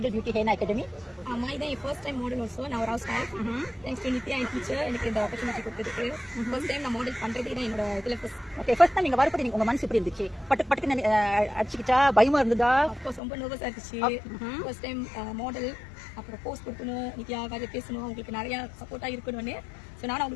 பியூட்டி ஹென்னா அகாடமி? ஆமா, இதான் என் ஃபர்ஸ்ட் டைம் மாடல். ஆல்சோ நான் ஒரு house wife. Thanks to Nithya N teacher எனக்கு இந்த ஆப்பர்ச்சுனிட்டி கொடுத்ததுக்கு. ஃபர்ஸ்ட் டைம் நான் மாடல் பண்றதே தான் என்னோட இதுல ஃபர்ஸ்ட். ஓகே, ஃபர்ஸ்ட் டைம் நீங்க வரப்போ உங்க மனசு எப்படி இருந்துச்சு? பட்டுக்கு அடிச்சுக்கிட்டா பயமா இருந்ததா? ஆஃப்கோர்ஸ் ரொம்ப நர்வஸா இருந்துச்சு. ஃபர்ஸ்ட் டைம் மாடல், அப்புறம் போஸ்ட் கொடுக்கணும், நித்யா காஜ பேசணும், உங்களுக்கு நிறைய சப்போர்ட்டா இருக்கணும்னு. ஸோ நானும்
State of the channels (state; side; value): drops out; right; at 13.2 s